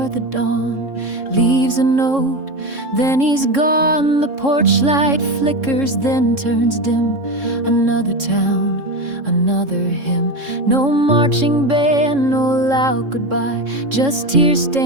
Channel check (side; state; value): left; late; 3.7 ms